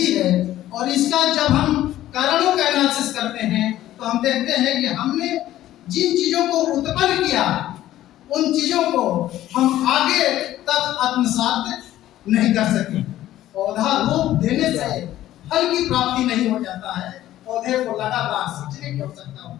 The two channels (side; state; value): right; quieter; 13.7 dB